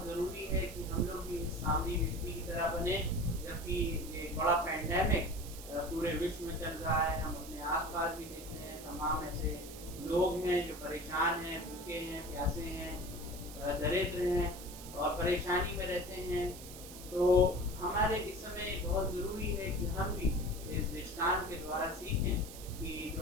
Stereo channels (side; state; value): right; noise; hiss, 14 dB below the sound